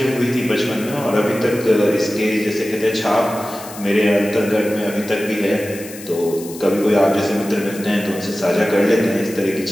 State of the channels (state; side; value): noise; left; hiss, 15 dB below the sound